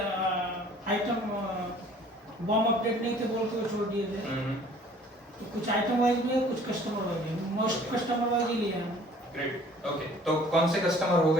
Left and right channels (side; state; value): both; normal; correlation 0.53